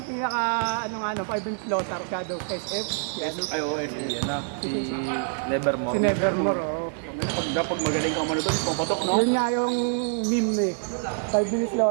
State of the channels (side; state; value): left; silent; 61 dB below the other